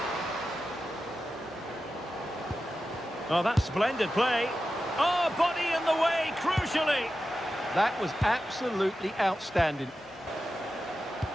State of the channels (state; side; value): normal; both; correlation 0.92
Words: Oh, that's splendid play. Oh, body in the way, crucially. That was absolutely outstanding.